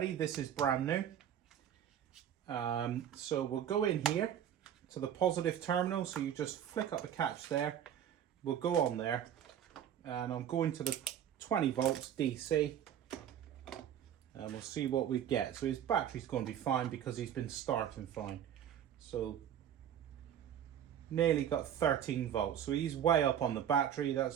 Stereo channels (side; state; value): left; quieter; 9.8 dB